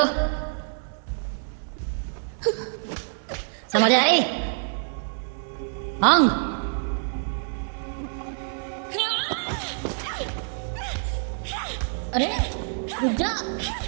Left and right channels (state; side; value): silent; left; digital silence